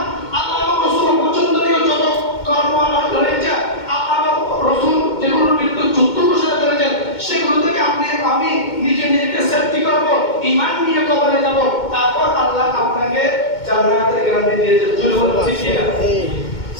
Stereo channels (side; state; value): right; late; 2.2 ms